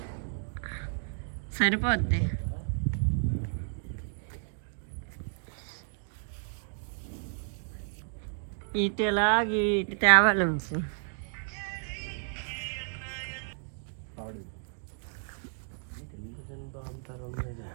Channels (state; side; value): silent; left; digital silence